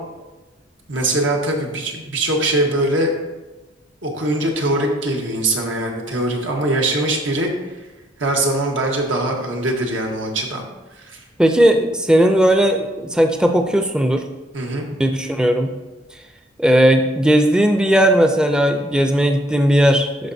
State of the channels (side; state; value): both; normal; correlation 0.67